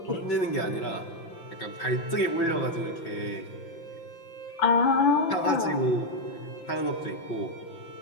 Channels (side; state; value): right; late; 5.9 ms